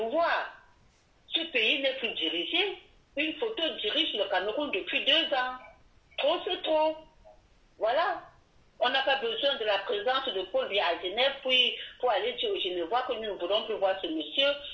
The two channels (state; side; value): identical; both; correlation 1.00